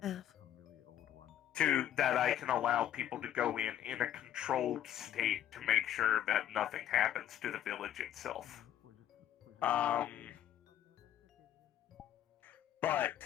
to that I can allow people to go in a controlled state to make sure that nothing happens to the village itself. But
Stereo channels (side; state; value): right; quieter; 11.2 dB